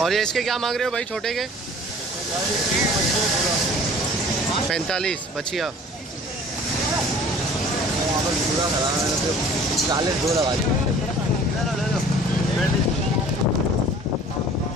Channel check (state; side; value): normal; both; correlation 0.48